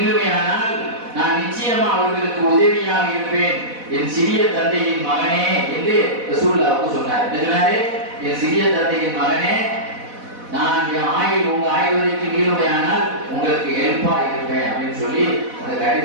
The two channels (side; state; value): left; late; 4.1 ms